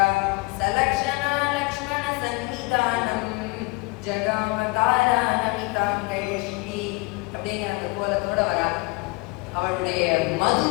சலக்ஷணா லக்ஷ்மண சன்னிதானம் ஜகாமதாரா நமிதாங்கயஷ்டி அப்படிங்கிற அந்த கோலத்தோட வரா. அவளுடைய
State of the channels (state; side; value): quieter; right; 26.0 dB